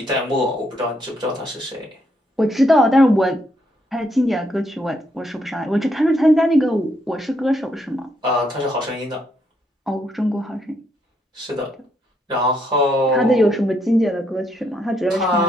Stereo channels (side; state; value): both; normal; correlation 0.75